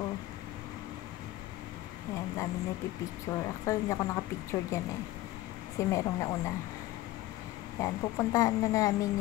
Yan, dami na pipicture. Actually, hindi ako nakapicture dyan eh. Kasi merong nauna. Yan, pupuntahan na namin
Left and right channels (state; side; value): quieter; right; 16.2 dB